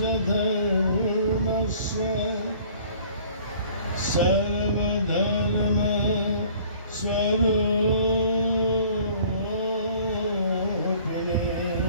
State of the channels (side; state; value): both; inverted; correlation -0.53